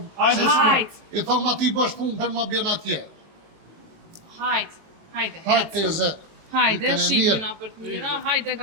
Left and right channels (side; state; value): left; late; 19 ms